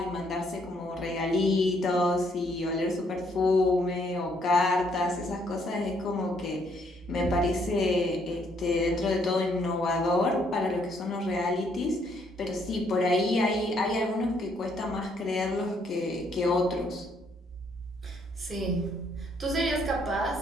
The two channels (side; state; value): both; normal; correlation 0.69